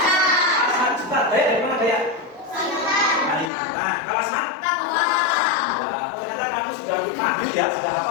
Asal Juta. Daya dari mana Daya? Kalimantan. Kalau Asma? Nah, ternyata kamu sudah mahir ya, sudah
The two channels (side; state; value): right; drops out; at 3.5 s